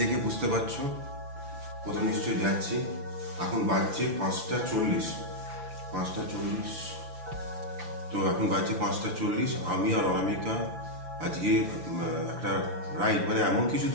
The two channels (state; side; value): late; left; 5.9 ms